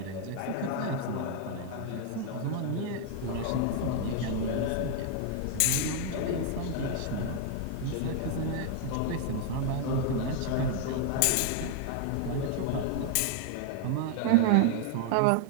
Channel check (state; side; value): different; both; correlation 0.00